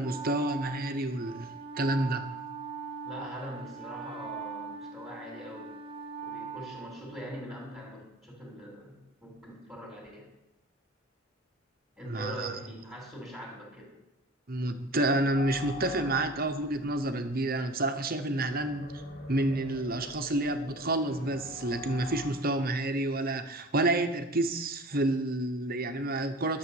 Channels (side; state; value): both; normal; correlation 0.42